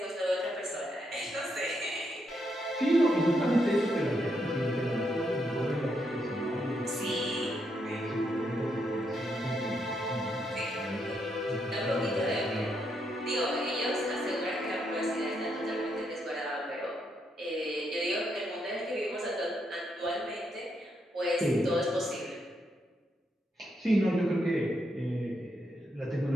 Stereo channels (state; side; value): normal; both; correlation 0.79